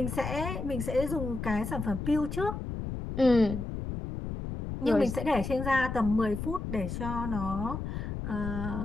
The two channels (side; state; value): left; noise; rumble, 5 dB below the sound